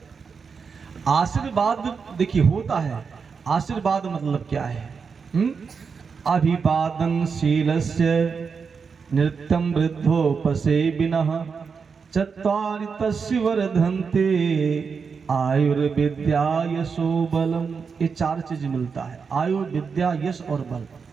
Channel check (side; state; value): left; quieter; 5.6 dB